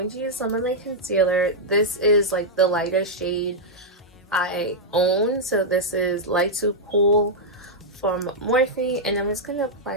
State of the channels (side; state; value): both; normal; correlation -0.05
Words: to use some of my concealer. This is like the lightest shade I own. So this is Light to Cool from Morphe. And I'm just going to